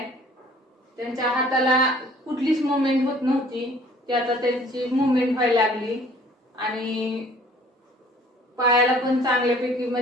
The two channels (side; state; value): both; normal; correlation 0.54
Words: त्यांच्या हाताला कुठलीच मुवमेंट होत नव्हती, ती आता त्यांची मुवमेंट व्हायला लागली. आणि पायाला पण चांगल्यापैकी